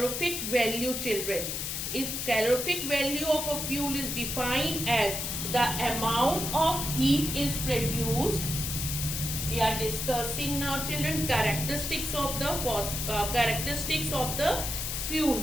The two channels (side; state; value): left; noise; hiss, 3 dB below the sound